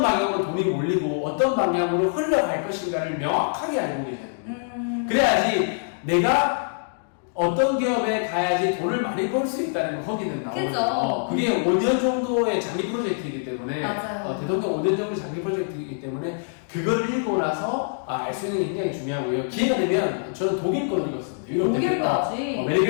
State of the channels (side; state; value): right; silent; digital silence